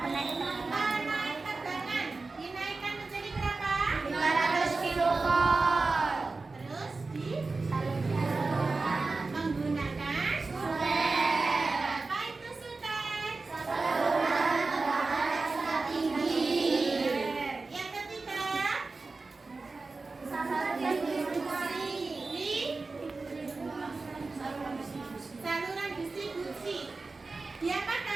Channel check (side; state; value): left; quieter; 3.8 dB